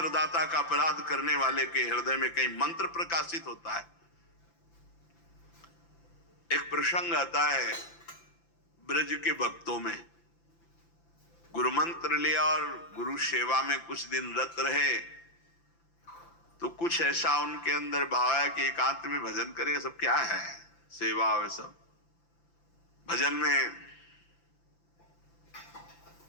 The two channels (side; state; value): right; late; 5.9 ms